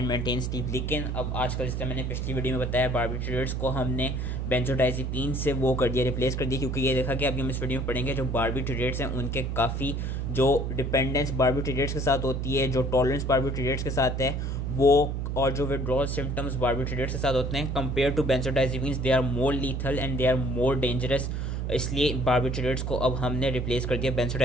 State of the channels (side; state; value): right; noise; hum, 2 dB below the sound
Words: maintain sleep. लेकिन अब आजकल जिस तरह मैंने पिछली वीडियो में बताया बारबिट्यूरेट्स को हमने बेंजोडाइज़ेपिन से वो कर दिया, रिप्लेस कर दिया, क्योंकि ये देखा कि अभी हम इस वीडियो में पढ़ेंगे जो बारबिट्यूरेट्स हैं उनके काफ़ी जो डिपेंडेंस बारबिट्यूरेट्स के साथ होती है, जो टॉलरेंस बारबिट्यूरेट्स के साथ है वो, और जो विड्रॉल सिम्टम्स बारबिट्यूरेट्स के साथ होते हैं compared to benzodiazepines, they are more lethal and they are more dangerous. इसलिए बारबिट्यूरेट्स को अब हमने रिप्लेस कर दिया